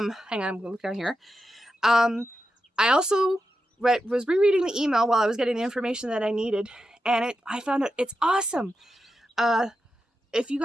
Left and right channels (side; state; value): both; normal; correlation 0.88